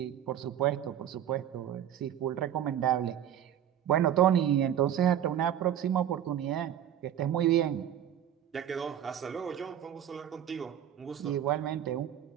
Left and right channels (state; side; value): quieter; left; 10.4 dB